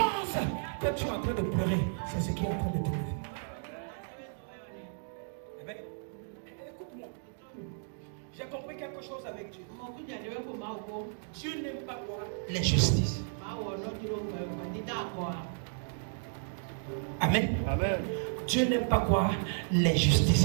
que tu es en train de pleurer, c'est ce qui est en train de te lever. Écoute-moi. J'ai compris quelque chose avec Dieu. Dieu n'aime pas quoi? L'injustice. Amen. Dieu n'aime pas quoi?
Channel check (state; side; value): silent; left; digital silence